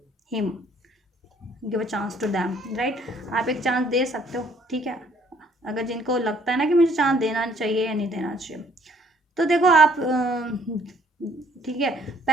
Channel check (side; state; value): both; normal; correlation 0.61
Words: him, give a chance to them, right. आप एक चांस दे सकते हो, ठीक है, अगर जिनको लगता है ना कि मुझे चांस देना चाहिए या नहीं देना चाहिए। तो देखो आप ठीक है,